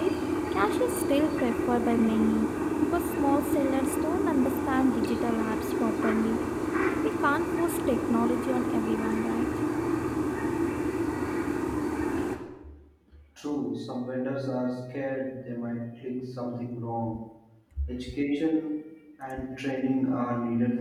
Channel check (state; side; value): identical; both; correlation 1.00